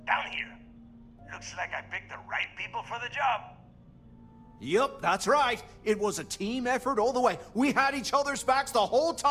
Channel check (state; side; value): identical; both; correlation 1.00